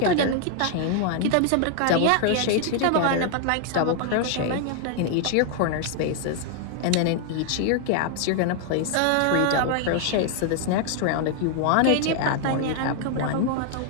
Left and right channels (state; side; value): different; both; correlation 0.00